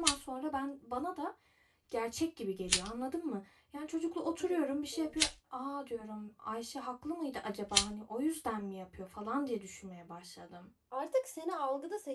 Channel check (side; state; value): both; identical; correlation 1.00